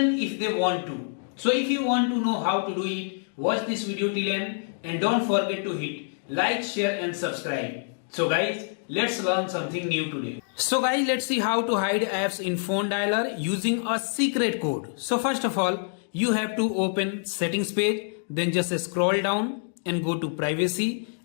if they want to. So if you want to know how to do it, watch this video till end and don't forget to hit like, share and subscribe. So guys, let's learn something new today. So guys, let's see how to hide apps in phone dialer using a secret code. So first of all, you have to open settings page, then just scroll down and go to privacy.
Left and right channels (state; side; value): silent; right; 61 dB below the other